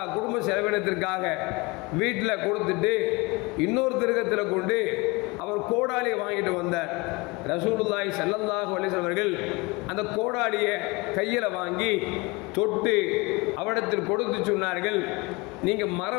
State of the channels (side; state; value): right; quieter; 24.9 dB